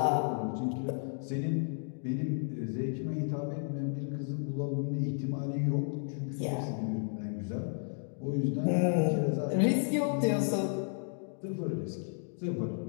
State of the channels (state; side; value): silent; right; 56 dB below the other